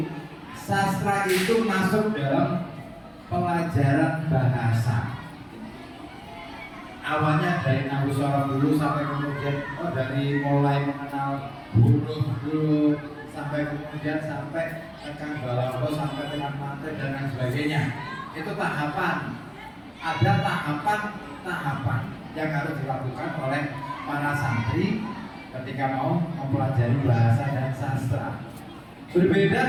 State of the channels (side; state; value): both; identical; correlation 1.00